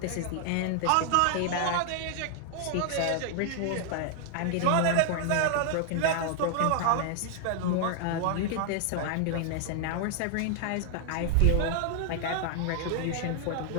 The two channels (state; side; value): different; both; correlation 0.00